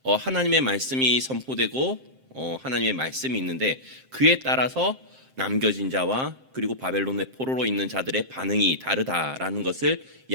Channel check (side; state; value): left; late; 7.6 ms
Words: 하나님의 말씀이 선포되고 하나님의 말씀이 있는데 그에 따라서 남겨진 자와 그리고 바벨론의 포로로 있는 자들의 반응이 다르다라는 것을